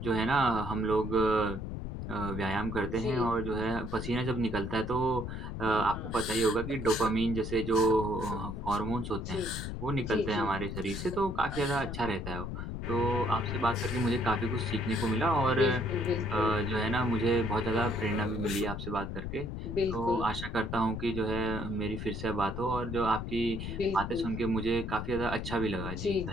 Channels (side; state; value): left; noise; rumble, 6 dB below the sound